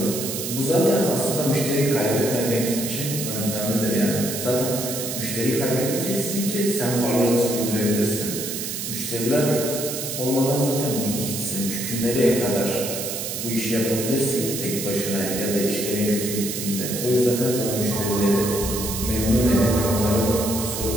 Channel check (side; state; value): right; noise; hiss, 5 dB below the sound